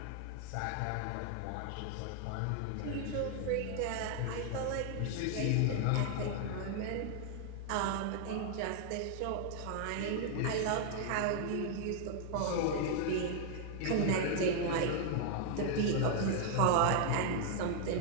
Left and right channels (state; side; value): different; both; correlation 0.00